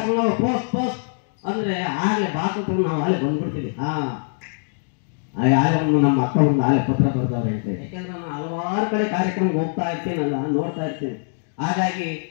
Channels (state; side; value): silent; right; digital silence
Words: ಪೋಸ್ಟ್ ಅಂದ್ರೆ ಆಗಲೇ ಬಾಕುತ್ತ ನಾವು ಆಲೆ ಬಂದ್ಬಿಡ್ತೀವಿ. ಯಾರೊಂದು ನಮ್ಮ ಅಕ್ಕ ಒಂದು ಆಲೆ ಪತ್ರ ಬರ್ದವ್ರೆ ಅಂತೇಳಿ. ಯಾಕೆಂದ್ರೆ ನಾನು ಹಲವಾರು ಕಡೆ ಕಾರ್ಯಕ್ರಮಕ್ಕೆ ಹೋಗ್ತಾ ಇರ್ತೀನಲ್ಲ, ನೋಡ್ತಾ ಇರ್ತೀನಿ. ಹಾಗಾಗಿ